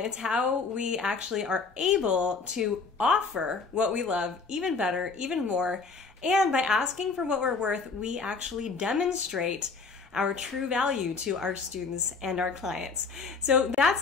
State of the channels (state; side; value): quieter; right; 4.6 dB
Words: how we actually are able to offer what we love even better, even more. And by asking for what we're worth, we actually demonstrate our true value to our students and our clients. So that's